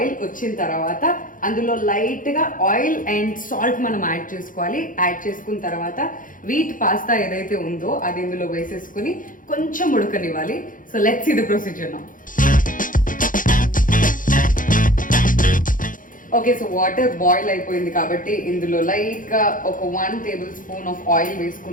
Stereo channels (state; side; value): late; right; 0.39 ms